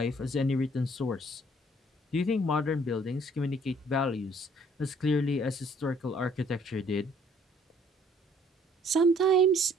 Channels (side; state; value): both; normal; correlation 0.60